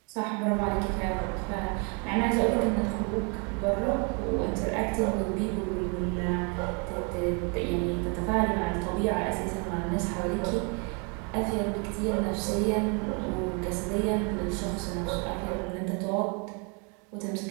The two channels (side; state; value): left; quieter; 35.0 dB